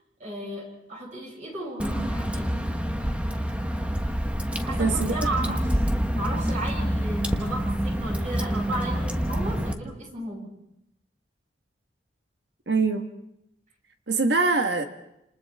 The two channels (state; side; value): normal; both; correlation 0.70